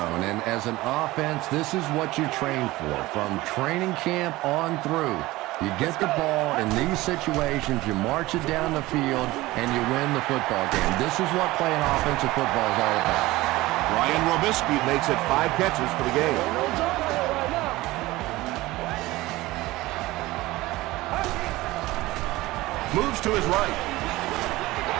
And as an offense, this is what you train for. From training camp on through, you get the ball in these situations, you march it down the field, and you win the football game. This is what playing offensive football is all about. Ryan Robisky makes it 5 catches for the game. Moves to his right.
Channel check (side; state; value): left; quieter; 18.9 dB